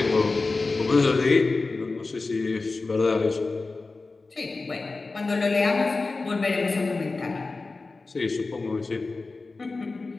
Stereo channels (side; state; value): right; quieter; 3.7 dB